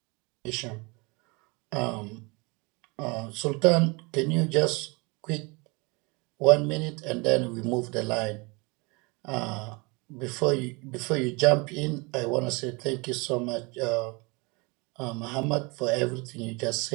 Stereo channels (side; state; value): left; quieter; 27.9 dB